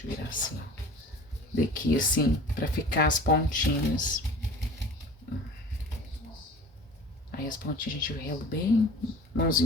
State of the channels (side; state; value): both; normal; correlation 0.42